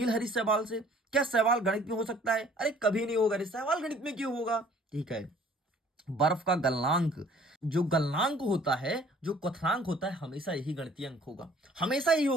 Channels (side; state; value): both; normal; correlation 0.55